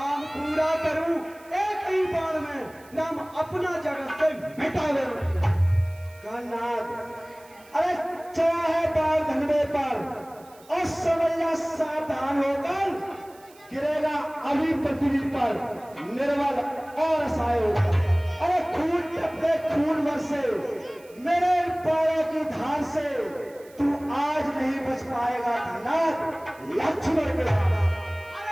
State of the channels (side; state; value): right; noise; hiss, 26 dB below the sound